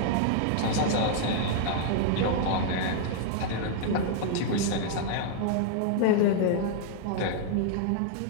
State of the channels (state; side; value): different; both; correlation -0.01